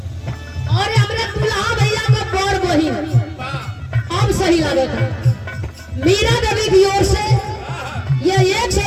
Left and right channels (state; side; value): identical; both; correlation 1.00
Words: और हमारे दुल्हा भैया का बड़ बहिन अब सही लगे था, मीरा देवी की ओर से ये 100